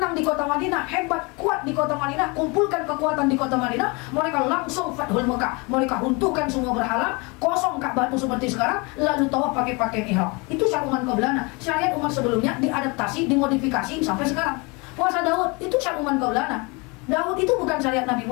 di kota Madinah, hebat, kuat di kota Madinah, kumpulkan kekuatan di kota Madinah, mereka langsung Fathul Mekah, mereka runtuhkan semua berhala, kosong Ka'bah itu seperti sekarang, lalu tawaf pakai pakaian ihram. Itu syariat umat qablana. Syariat umat sebelumnya diadaptasi, dimodifikasi sampai sekarang. Puasa Daud itu syariat umat qablana. Daud itu bukan syariat Nabi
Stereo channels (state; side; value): quieter; right; 28.5 dB